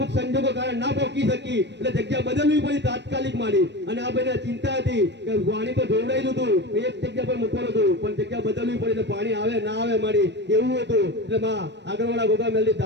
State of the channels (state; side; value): late; left; 0.51 ms